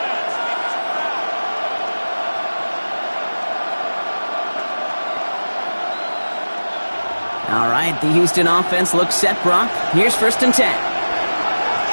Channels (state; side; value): inverted; both; correlation -1.00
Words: All right, the Houston offense looks set, Brock. Here's 1st and 10.